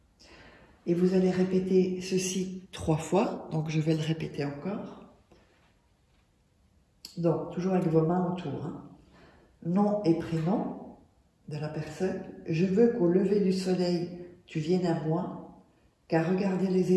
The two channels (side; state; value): both; identical; correlation 1.00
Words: Et vous allez répéter ceci 3 fois, donc je vais le répéter encore. Donc, toujours avec vos mains autour. Hein. Nom et prénom de la personne. Je veux qu'au lever du soleil, tu viennes à moi, car regarder les